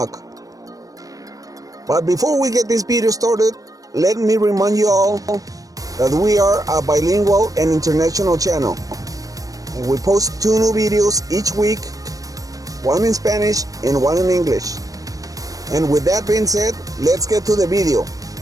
But before we get this video started, let me remind you all that we are a bilingual and international channel, and we post 2 new videos each week, one in Spanish and one in English. And with that being said, let's get to the video.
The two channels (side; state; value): left; late; 0.17 ms